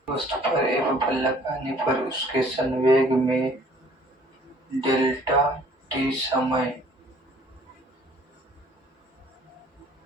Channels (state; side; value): normal; both; correlation 0.56